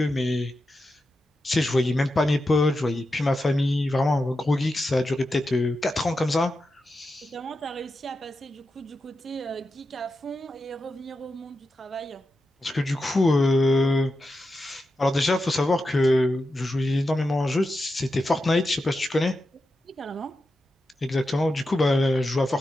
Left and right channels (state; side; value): normal; both; correlation 0.89